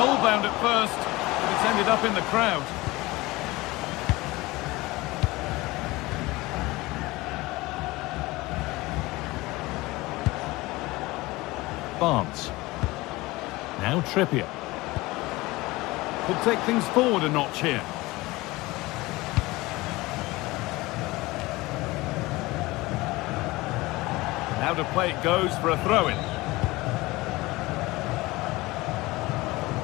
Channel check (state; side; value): quieter; right; 20.8 dB